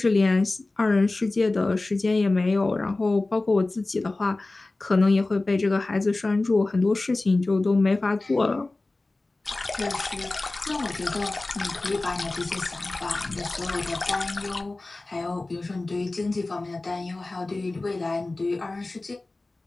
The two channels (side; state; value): right; quieter; 3.1 dB